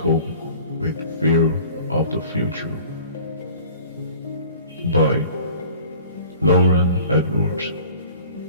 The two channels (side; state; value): both; inverted; correlation -0.46